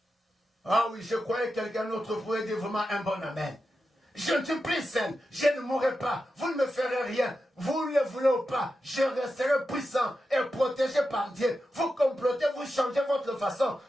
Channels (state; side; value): normal; both; correlation 0.90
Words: Ah oui, je croyais que quelqu'un d'autre pouvait dire vraiment un bon amen. Je ne suis plus saine, je ne mourrai pas, vous ne me ferez rien, vous ne le voulez ou pas, je resterai puissant et protégé par Dieu. Vous complotez, vous changez votre façon,